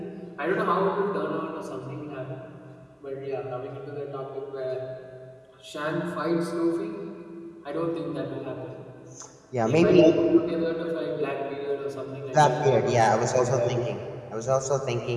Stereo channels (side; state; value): both; identical; correlation 1.00